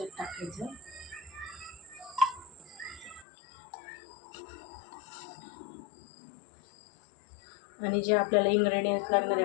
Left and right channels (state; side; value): drops out; right; at 3.2 s